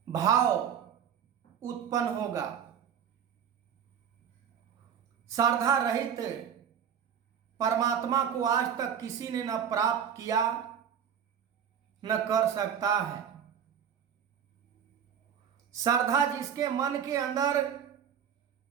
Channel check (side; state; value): left; quieter; 8.3 dB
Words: भाव उत्पन्न होगा? श्रद्धा रहित परमात्मा को आज तक किसी ने न प्राप्त किया न कर सकता है। श्रद्धा जिसके मन के अंदर